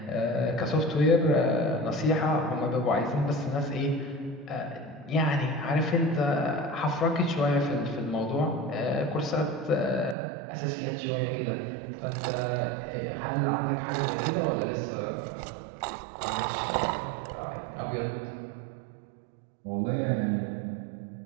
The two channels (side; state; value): left; drops out; at 10.2 s